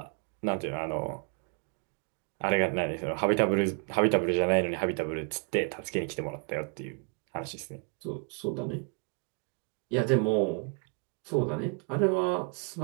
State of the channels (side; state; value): left; quieter; 38.8 dB